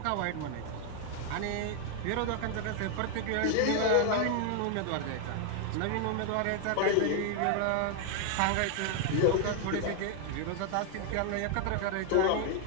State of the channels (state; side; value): different; both; correlation 0.01